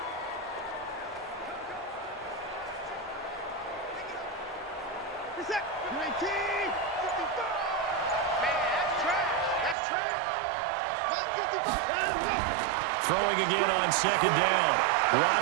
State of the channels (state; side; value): drops out; left; at 9.8 s